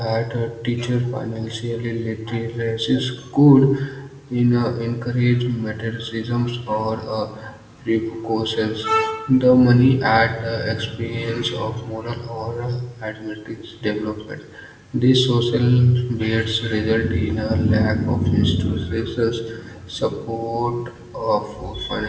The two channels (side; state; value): both; identical; correlation 1.00